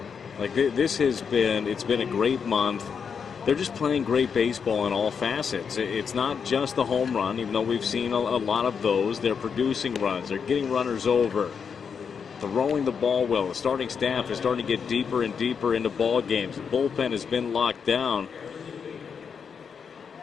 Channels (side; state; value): right; quieter; 6.5 dB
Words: Like, it's been a great month. They're just playing great baseball in all facets. It's not just the home run, even though we've seen a lot of those. They're producing runs. They're getting runners over. throwing the ball well. The starting staff is starting to get deeper and deeper into ball games. The bullpen has been locked down.